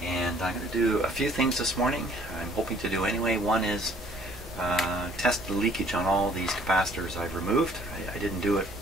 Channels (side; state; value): both; normal; correlation 0.58